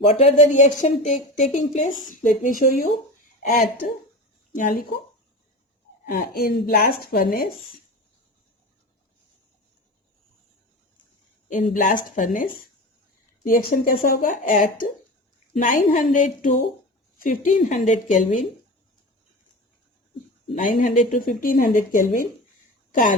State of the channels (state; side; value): normal; both; correlation 0.30